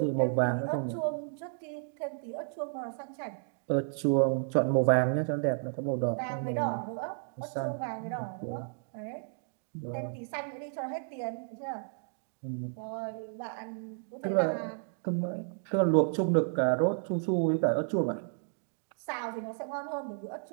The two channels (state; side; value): silent; left; digital silence